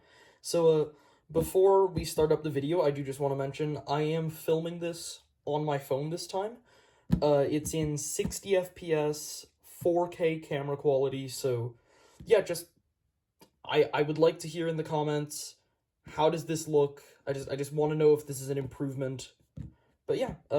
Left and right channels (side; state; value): both; identical; correlation 1.00